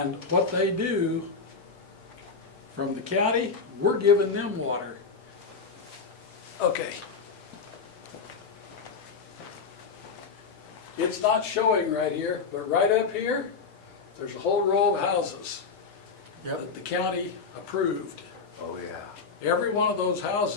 what they do from the county, we're giving them water. Okay. It's not showing right here, but right up here, there's a whole row of houses that the county approved. Oh, yeah. Every one of those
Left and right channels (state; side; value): quieter; right; 5.0 dB